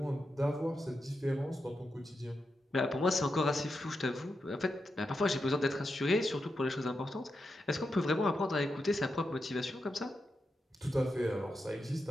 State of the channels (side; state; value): both; normal; correlation 0.87